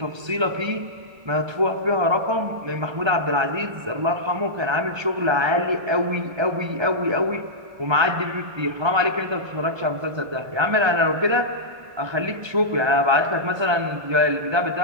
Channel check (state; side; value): late; left; 1.3 ms